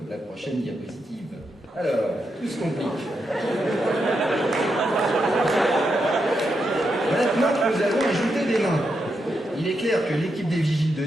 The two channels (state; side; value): normal; both; correlation 0.84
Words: la prochaine diapositive. Alors, tout se complique. Maintenant que nous avons ajouté des nains, il est clair que l'équipe des vigiles de